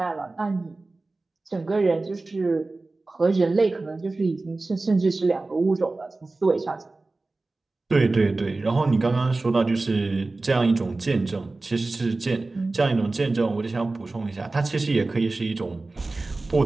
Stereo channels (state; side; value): quieter; left; 3.3 dB